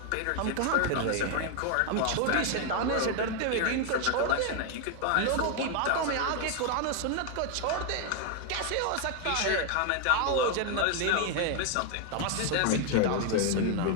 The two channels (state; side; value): different; both; correlation 0.01